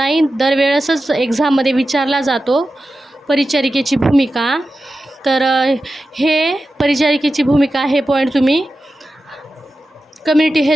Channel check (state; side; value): normal; both; correlation 0.92